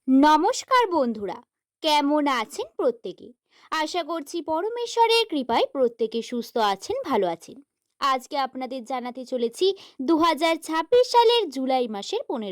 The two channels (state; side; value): identical; both; correlation 1.00